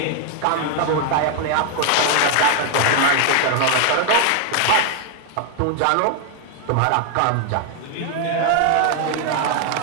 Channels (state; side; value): different; both; correlation 0.00